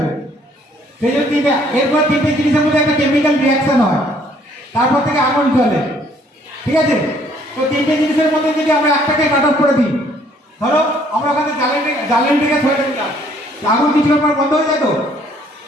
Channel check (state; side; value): normal; both; correlation 0.62